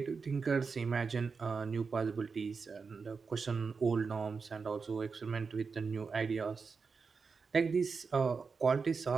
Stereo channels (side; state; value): left; quieter; 5.0 dB